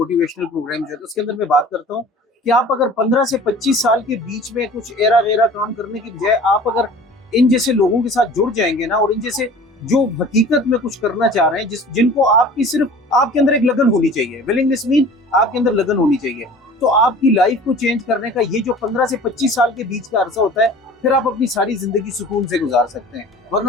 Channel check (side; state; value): both; normal; correlation 0.44